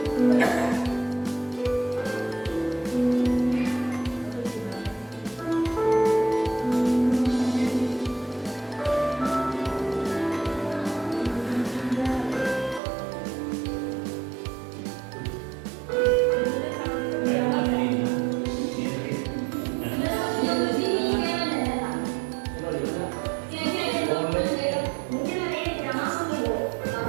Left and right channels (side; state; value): left; drops out; at 12.8 s